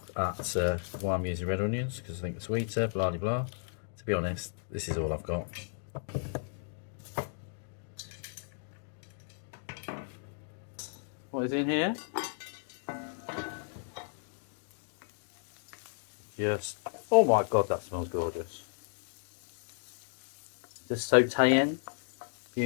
at why I'm using red onions, because I think it's sweeter, blah blah blah. To be honest, this is all I've got. What is in here? Just, oh my god, that smells gorgeous. Just sauteing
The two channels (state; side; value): silent; right; digital silence